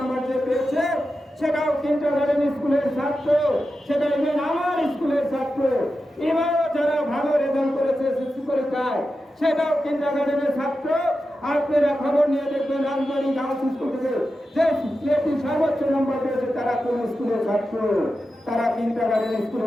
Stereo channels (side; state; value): both; normal; correlation 0.91